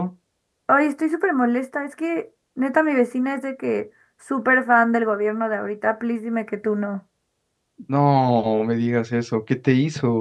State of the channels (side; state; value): both; identical; correlation 1.00